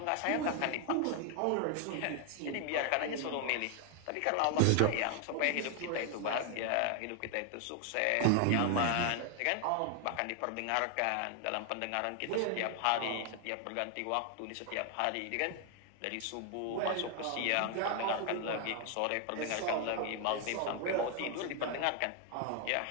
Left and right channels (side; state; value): both; different; correlation 0.00